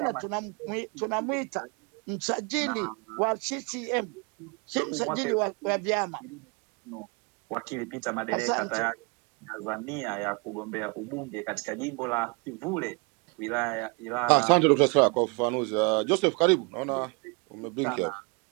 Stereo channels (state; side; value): quieter; left; 31.4 dB